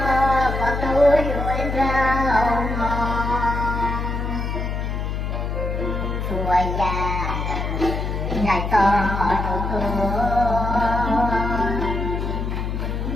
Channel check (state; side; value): noise; left; hum, 2 dB below the sound